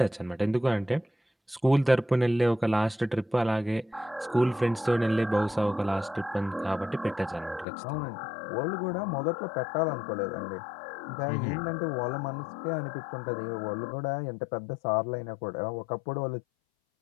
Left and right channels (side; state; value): right; drops out; at 7.7 s